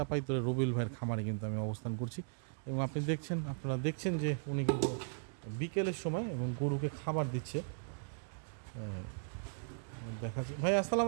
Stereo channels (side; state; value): left; silent; digital silence